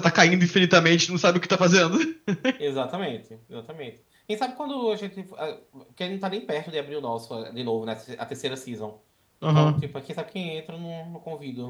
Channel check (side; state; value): both; identical; correlation 1.00